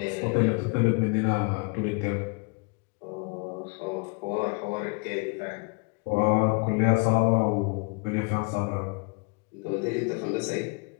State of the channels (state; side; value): quieter; right; 31.5 dB